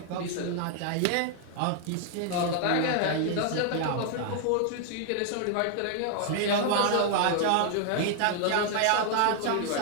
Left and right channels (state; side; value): different; both; correlation 0.00